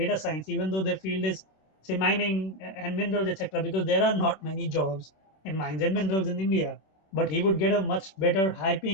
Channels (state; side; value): late; right; 26 ms